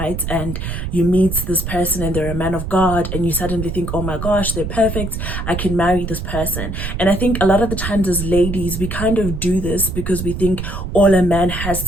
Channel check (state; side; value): noise; right; rumble, 5 dB below the sound